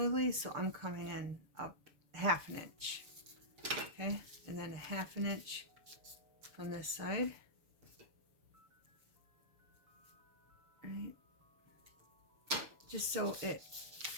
so I'm coming in up 1/2 an inch. Okay, and then 1/2 an inch from this side. Right. Just so it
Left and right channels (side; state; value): left; late; 6.9 ms